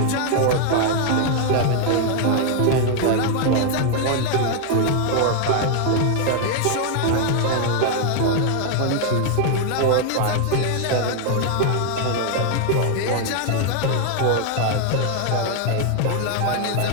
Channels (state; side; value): different; both; correlation 0.00